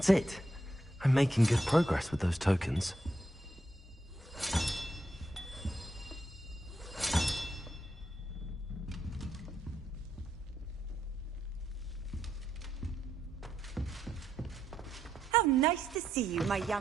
it. I'm making good progress with those tokens. How nice to see you, my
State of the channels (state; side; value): normal; both; correlation 0.80